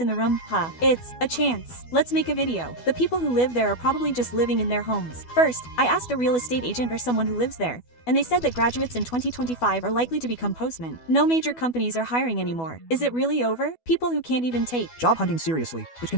the room, it's a chance. Let's make a video. The people who live there are probably just living in their homes. First, I asked a real estate agent or someone who lives there. and they said that graduates in 2025 are likely to become postmen. No major companies are hiring anymore. Is it really over? People who can't even take Job hunting seriously, which can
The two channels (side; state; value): right; late; 12 ms